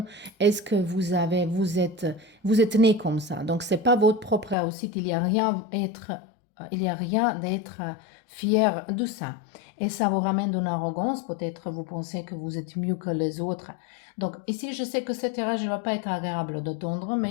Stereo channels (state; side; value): drops out; right; at 4.5 s